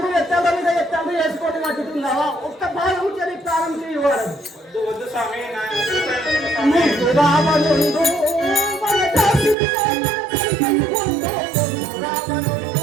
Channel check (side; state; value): left; drops out; at 9.6 s